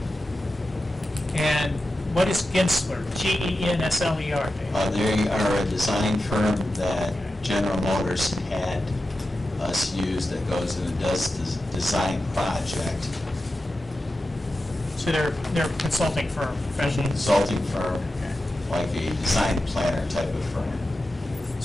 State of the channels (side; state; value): both; normal; correlation 0.91